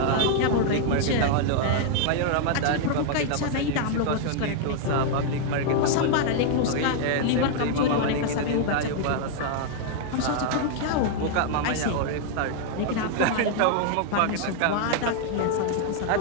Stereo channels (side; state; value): both; different; correlation 0.00